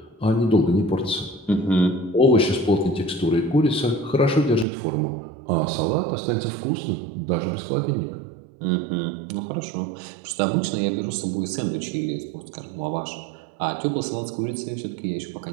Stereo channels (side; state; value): left; drops out; at 4.7 s